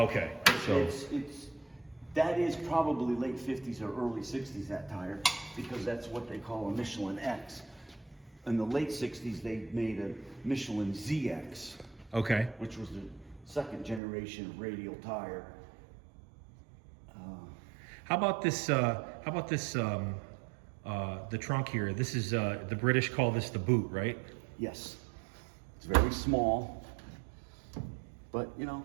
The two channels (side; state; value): left; drops out; at 14.0 s